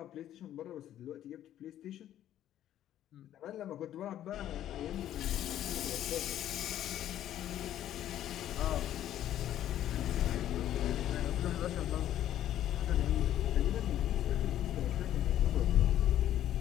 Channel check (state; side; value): quieter; right; 11.8 dB